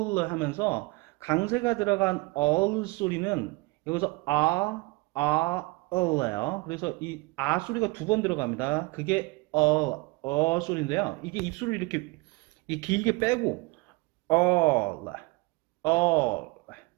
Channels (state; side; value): quieter; left; 24.3 dB